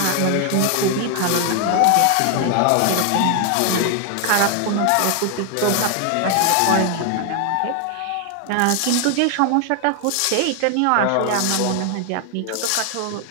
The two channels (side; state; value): both; different; correlation 0.00